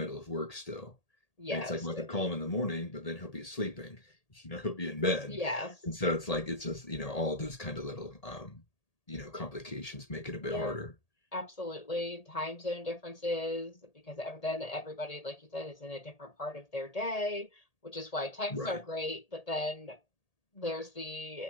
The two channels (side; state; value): right; late; 1.8 ms